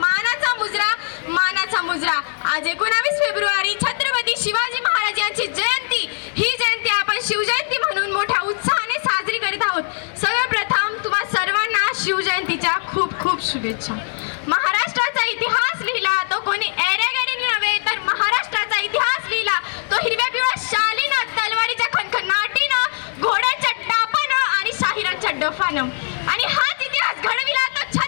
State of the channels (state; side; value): silent; right; digital silence